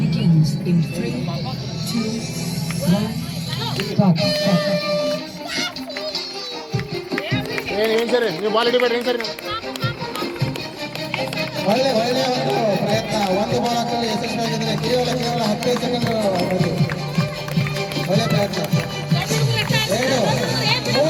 ಏನ್ ಸರಿ ನೀವು ಬಾಲ್ ಹಿಡಿಬೇಡ್ರಿ. ಏನ್ ಸರಿ ಒಳ್ಳೆಯ ಒಂದು ಪ್ರಯತ್ನ. ಒಂದು ಬಾಲ್ ಹಾಕಲು ಯಶಸ್ವಿಯಾಗಿದ್ರೆ ಕೇವಲ 15 ಸೆಕೆಂಡ್. ಒಳ್ಳೆಯ ಪ್ರಯತ್ನ. 2,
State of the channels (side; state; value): both; identical; correlation 1.00